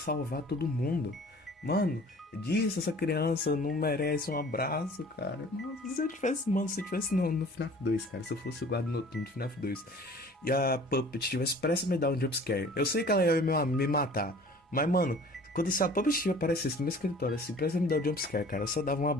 todo mundo. Mano, essa criança não merece um abraço, cara. Nossa, se eu tivesse no FNAF 2, cara, se eu fosse o guarda noturno do FNAF 2 e a Puppet tivesse prestes a me dar um jumpscare, eu sei que ela ia me matar, mas, mano, quando a Puppet aparecesse no meu escritório, assim, prestes a me dar um jumpscare, cara, eu só dava um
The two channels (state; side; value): normal; both; correlation 0.48